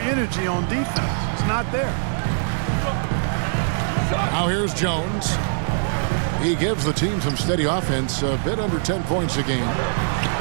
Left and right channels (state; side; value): silent; left; digital silence